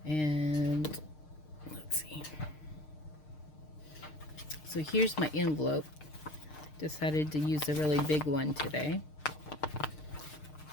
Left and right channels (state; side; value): late; right; 6.6 ms